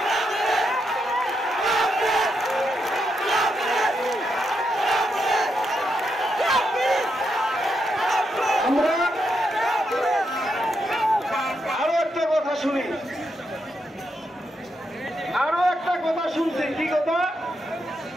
আমরা আরো একটা কথা শুনি, আরো একটা কথা শুনছি। কি কথা?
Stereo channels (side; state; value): both; normal; correlation 0.82